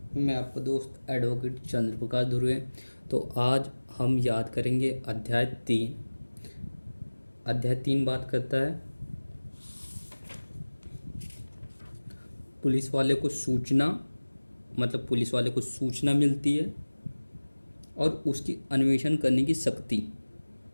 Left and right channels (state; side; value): inverted; both; correlation -1.00